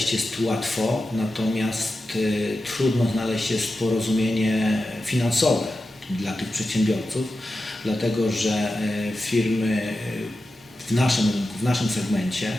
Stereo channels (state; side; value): normal; both; correlation 0.92